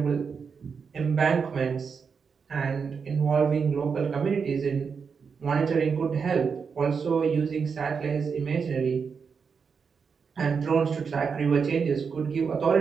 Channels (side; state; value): left; quieter; 5.8 dB